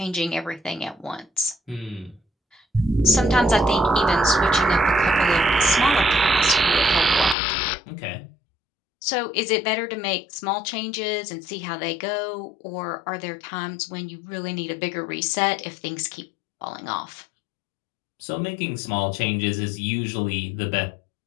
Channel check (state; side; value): drops out; right; at 7.4 s